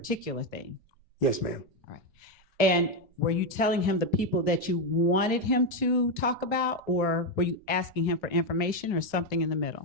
thing? Yes, ma'am. All right. And were you telling him the people that you wanted him to talk about, or were you asking him for information or something in the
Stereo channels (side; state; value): both; normal; correlation 0.06